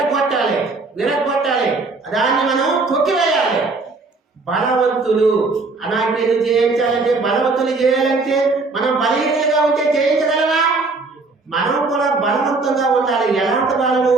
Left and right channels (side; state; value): left; quieter; 3.7 dB